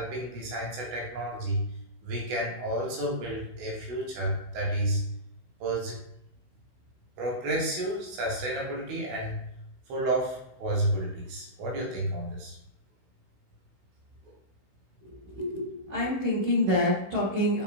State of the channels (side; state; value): left; late; 16 ms